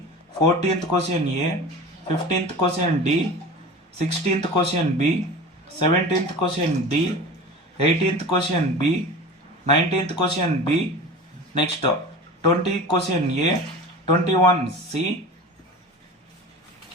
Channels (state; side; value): normal; both; correlation 0.35